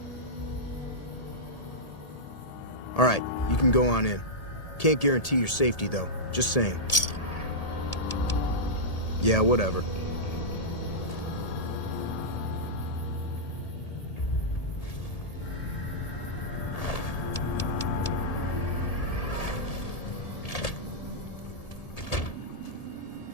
All right, you can go on in. Can't guarantee your safety, though. Just saying. Yeah, whatever.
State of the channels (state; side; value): late; right; 1.8 ms